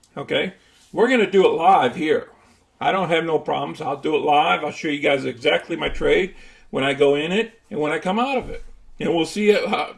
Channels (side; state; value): both; identical; correlation 1.00